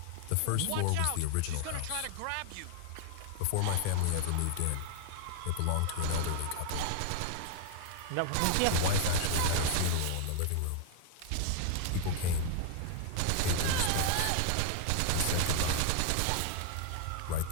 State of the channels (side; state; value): both; different; correlation 0.00